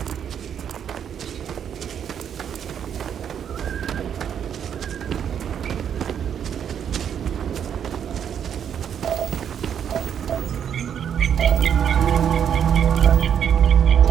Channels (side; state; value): left; quieter; 8.6 dB